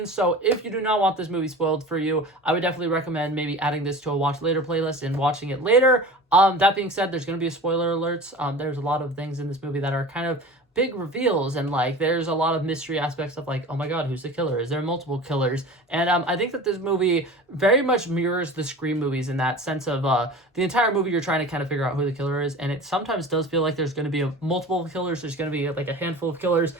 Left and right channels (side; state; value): both; normal; correlation 0.37